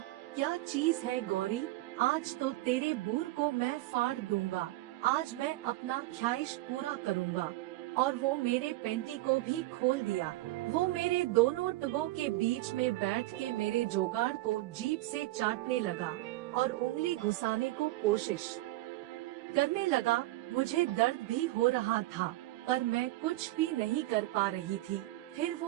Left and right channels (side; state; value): left; quieter; 18.1 dB